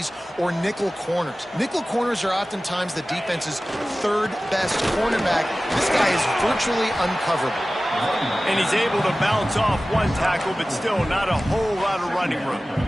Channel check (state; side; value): normal; both; correlation 0.96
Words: or nickel corners. Nickel corners are oftentimes the defense's third best cornerback. This guy is virtually uncoverable. And he's able to bounce off one tackle, but still not a whole lot of running room.